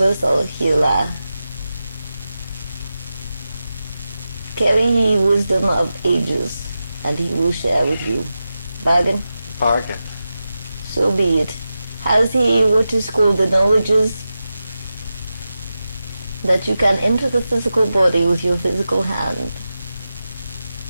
healer. Carry ye wisdom of ages, and he will share with you. Bargain? Bargain. So be it. Has he what is called the knowledges that you can enter the physical body with your physical hand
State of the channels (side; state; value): both; inverted; correlation -0.92